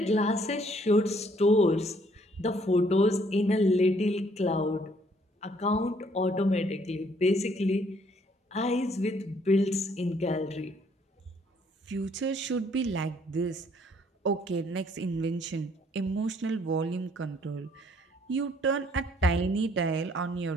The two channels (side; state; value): both; normal; correlation 0.64